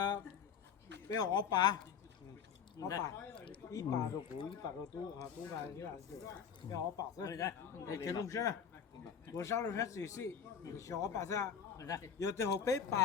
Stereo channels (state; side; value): quieter; right; 7.5 dB